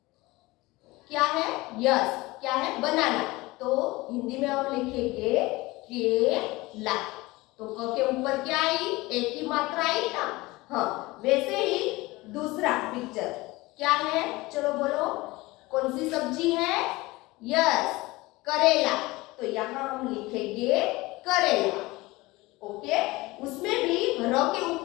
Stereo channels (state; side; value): quieter; right; 21.1 dB